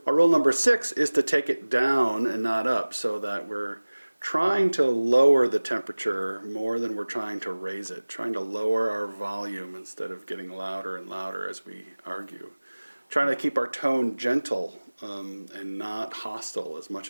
Our rule number 6 is to take it down and not up, so that we're trying to lower the temperature more than we're trying to raise it, trying to lower our volume instead of getting louder and louder as we argue, trying to keep our tone gentle and not hostile as much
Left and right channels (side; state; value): both; inverted; correlation -1.00